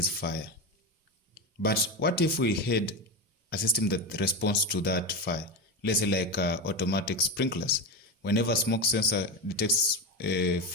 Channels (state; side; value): normal; both; correlation 0.17